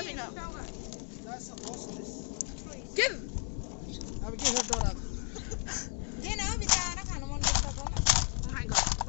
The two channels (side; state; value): right; quieter; 39.8 dB